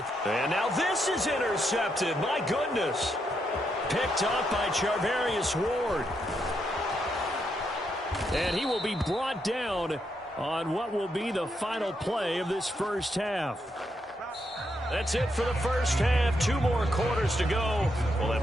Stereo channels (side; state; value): both; normal; correlation 0.80